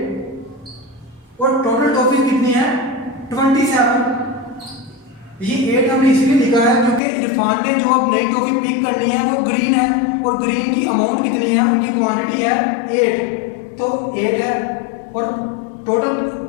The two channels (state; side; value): drops out; right; at 7.0 s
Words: और टोटल टॉफीज कितनी है 27। ये 8 हमने इसलिए लिखा है क्योंकि इरफान ने जो अब नई टॉफी पिक करनी है वो ग्रीन है, और ग्रीन की अमाउंट कितनी है, उनकी क्वांटिटी है 8, तो 8 है और टोटल